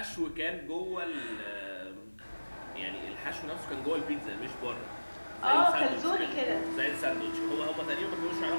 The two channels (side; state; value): both; inverted; correlation -1.00